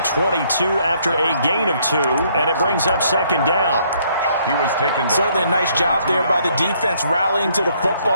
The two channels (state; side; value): inverted; both; correlation -0.67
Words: after a gain of 2, and it brings up 2nd down. He was taken down. Certainly a nice job there by the defense rallying to the